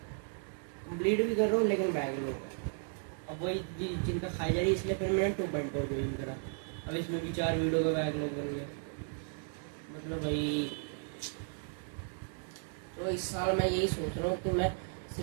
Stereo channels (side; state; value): left; silent; 55 dB below the other